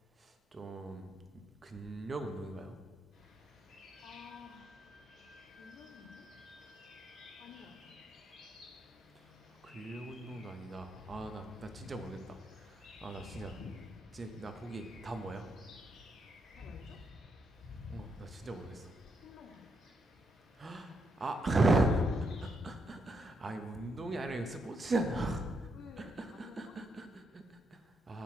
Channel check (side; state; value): both; normal; correlation 0.79